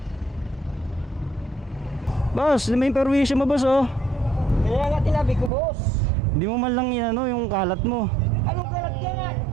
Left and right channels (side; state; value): left; drops out; at 5.5 s